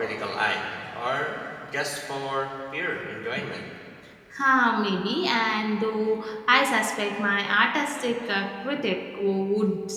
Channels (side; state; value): both; identical; correlation 1.00